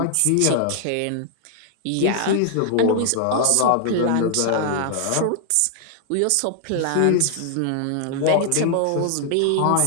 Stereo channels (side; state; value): both; different; correlation 0.00